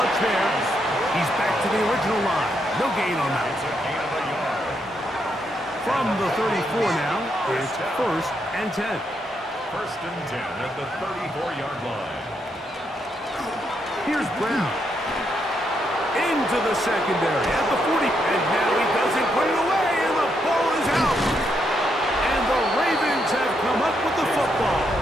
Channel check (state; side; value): normal; both; correlation 0.79